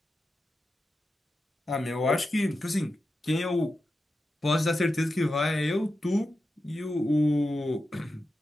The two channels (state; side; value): normal; both; correlation 0.90